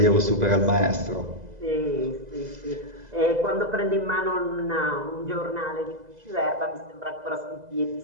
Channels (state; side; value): late; left; 2.0 ms